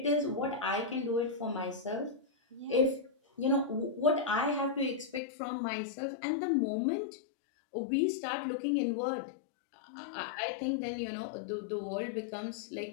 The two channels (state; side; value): drops out; right; at 5.2 s